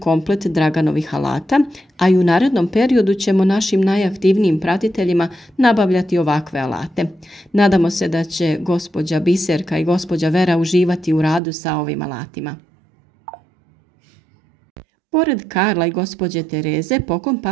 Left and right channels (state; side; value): drops out; left; at 11.4 s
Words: Draganovih alata, a i u narednom periodu ćemo našim najaktivnijim pratiteljima nabavljati ovakve alate. Nadamo se da će gospođa Biserka i gospođa Vera uživati u radu sa ovim alatima. Pored Karla i gospođe Tereze, poklon